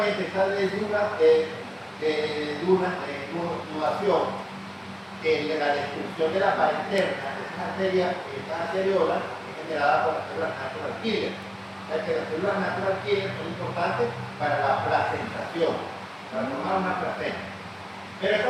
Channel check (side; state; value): both; identical; correlation 1.00